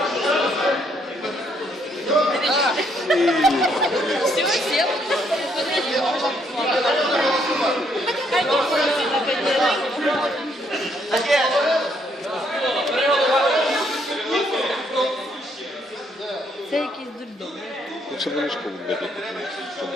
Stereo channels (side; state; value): both; normal; correlation 0.71